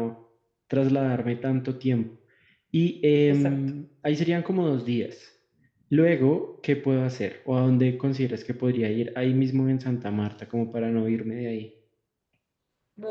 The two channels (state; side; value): identical; both; correlation 1.00